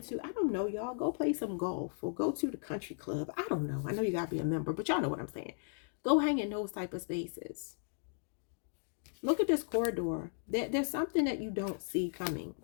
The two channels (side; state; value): right; silent; digital silence